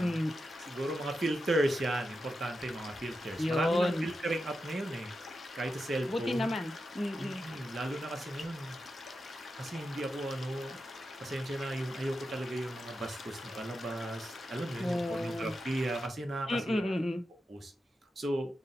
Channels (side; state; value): both; normal; correlation 0.89